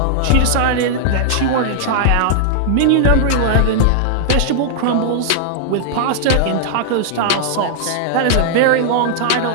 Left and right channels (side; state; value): both; different; correlation -0.01